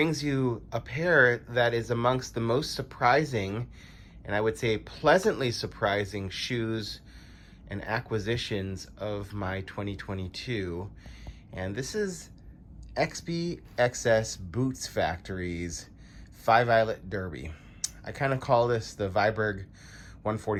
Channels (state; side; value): identical; both; correlation 1.00